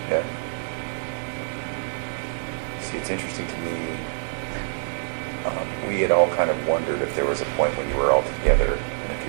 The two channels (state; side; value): silent; left; digital silence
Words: Yeah. See, it's interesting to me. We had all kind of wondered if there was a point when you were all together and if